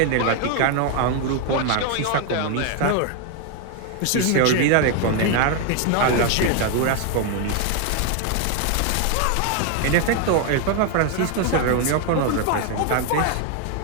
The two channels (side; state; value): both; different; correlation 0.01